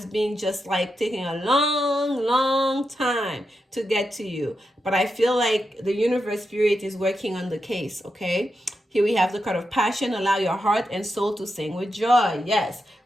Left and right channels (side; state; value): both; normal; correlation 0.87